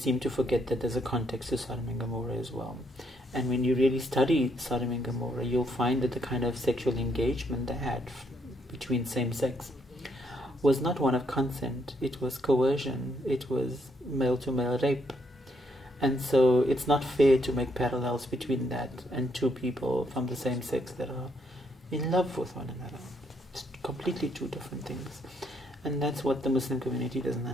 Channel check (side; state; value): both; normal; correlation 0.74